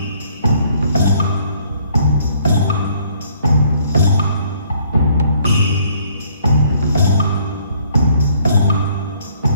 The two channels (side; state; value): both; inverted; correlation -0.63